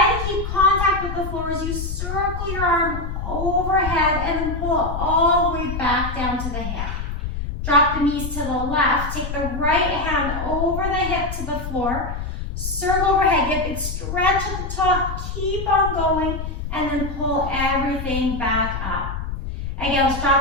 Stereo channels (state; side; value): noise; left; rumble, 5 dB below the sound